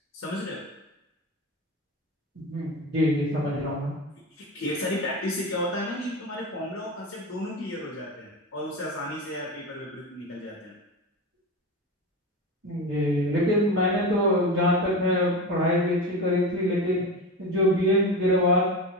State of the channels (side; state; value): both; normal; correlation 0.24